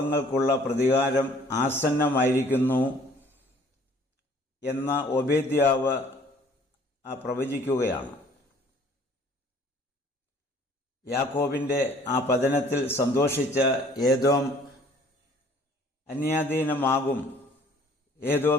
പ്രതികാരം ആസന്നമായിരിക്കുന്നു എന്ന ഒബേദ്യാവ് പ്രവചിക്കുകയാണ്. യാക്കോബിൻ്റെ ആ പതനത്തിൽ സന്തോഷിച്ച ഏദോം അന്യാധീനമാകും,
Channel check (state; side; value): normal; both; correlation 0.55